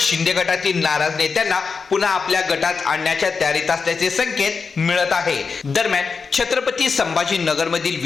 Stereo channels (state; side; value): quieter; right; 5.1 dB